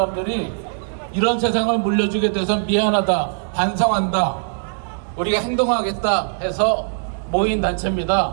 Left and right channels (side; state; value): left; silent; digital silence